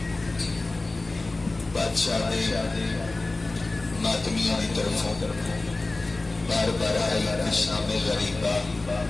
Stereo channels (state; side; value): quieter; right; 3.2 dB